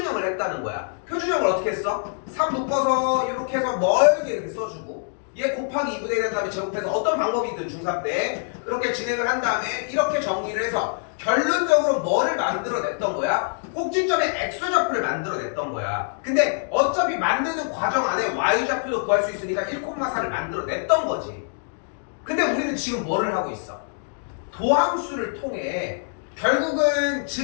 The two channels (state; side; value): silent; right; digital silence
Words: 했다는 거야. 표준형을 어떻게 했어? 3 묶어서 이렇게 해서 멀게 이렇게 써주고 얘 곱하기 2분의 1 한 다음에 제곱해서 어떤 방법이든 중3 때 그렇게 진행을 한 다음에 이렇게 정리를 해서 결론적으로 뭐를 만들어냈던 거야? 꼭지점에 x좌표를 만들어냈던 거야. 근데 어차피 만드는 과정 안에 y좌표도 구할 수 있으니까 1,4를 만들어냈던 거지. 근데 우리는 지금 뭐를 하고 있어? 도함수를 통해 결국은